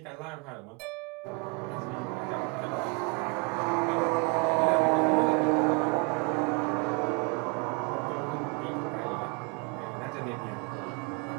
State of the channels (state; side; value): quieter; left; 31.5 dB